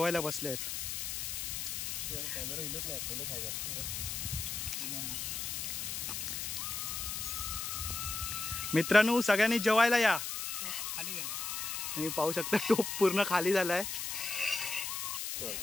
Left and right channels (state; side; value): noise; left; hiss, 3 dB below the sound